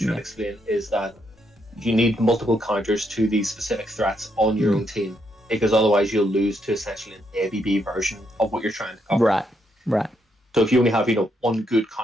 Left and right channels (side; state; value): both; normal; correlation 0.77